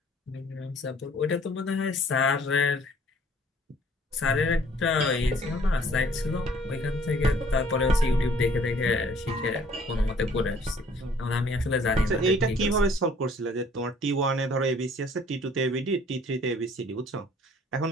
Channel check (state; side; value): normal; both; correlation 0.57